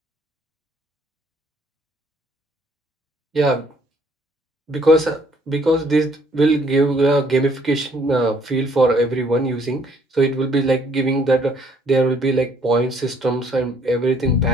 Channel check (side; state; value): both; normal; correlation 0.63